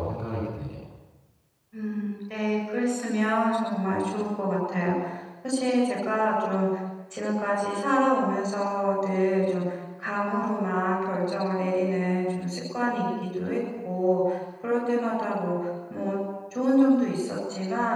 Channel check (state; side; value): identical; both; correlation 1.00